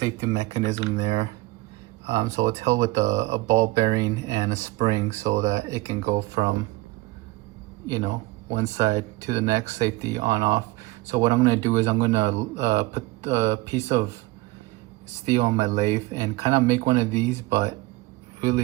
mechanism there. So it's held with a ball bearing and a spring so that it can go from one side to the next, safety on off. So what I'm going to do is I'm going to put a piece of steel on my lathe and kind of make one of these, but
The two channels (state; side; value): quieter; left; 20.6 dB